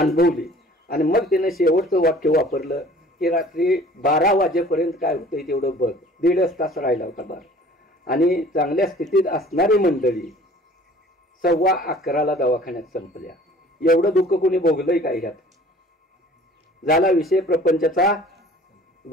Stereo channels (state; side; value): normal; both; correlation 0.49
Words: आणि मग तिनं शेवटचं वाक्य वापरलं की रात्री 12 वाजेपर्यंत काय होतंय तेवढं बघ. 1.5 तास राहिला होता बार. आणि चांगल्या स्थितीत असणारी मंडळी 11:15 दवाखान्यात संपल्या. एवढं दुःख कोणी भोगलंय काय ह्यात. झाला विषय प्रपंचाचा